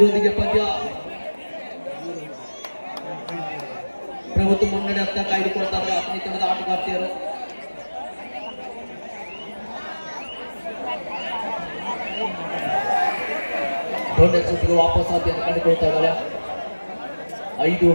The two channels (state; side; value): inverted; both; correlation -1.00